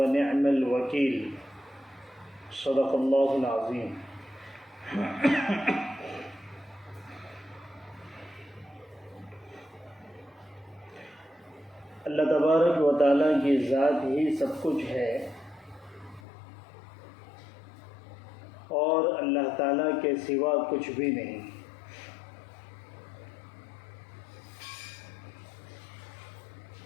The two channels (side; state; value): right; drops out; at 16.2 s